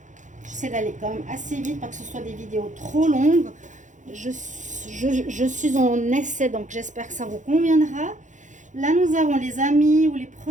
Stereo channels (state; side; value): late; left; 0.36 ms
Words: J'essaie d'aller quand même assez vite, pas que ce soit des vidéos trop longues. Je suis en essai, donc j'espère que ça vous conviendra. Là, nous avons les amis ou les